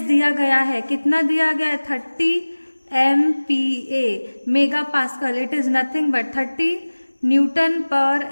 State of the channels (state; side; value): inverted; both; correlation -1.00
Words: दिया गया है, कितना दिया गया है, 30 MPa mega pascal. It is nothing but 30 newton per